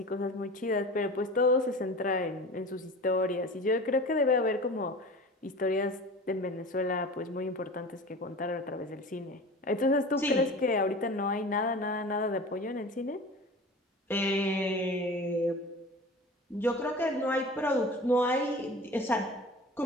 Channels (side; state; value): both; normal; correlation 0.37